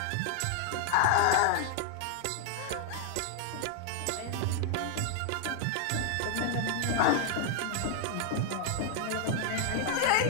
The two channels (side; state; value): both; different; correlation 0.00